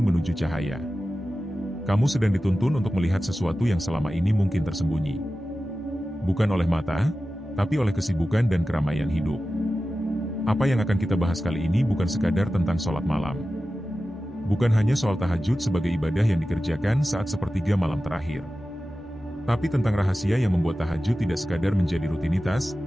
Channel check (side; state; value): both; normal; correlation 0.94